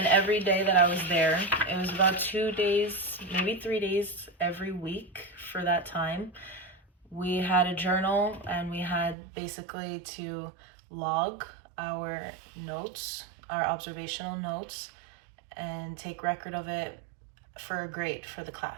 every day that I was there, it was about 2 days, maybe 3 days every week for that time. We had a journal, and we had basically to log our notes, our observational notes, and take record of it for a grade for the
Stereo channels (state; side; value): drops out; left; at 9.2 s